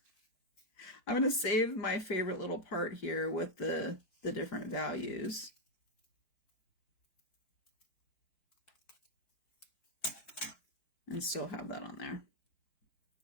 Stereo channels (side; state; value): right; late; 4.6 ms